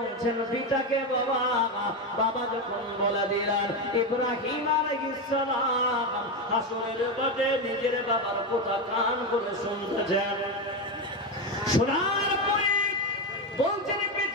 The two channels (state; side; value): normal; both; correlation 0.12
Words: পিতাকে বাবা, বাবা যখন বলে দিলেন ইব্রাহিম আলাইহিস সালাম হাসরের মাঠে নিজের বাবার কথা কান করে শুনতেছেন। শোনার পরে বলছেন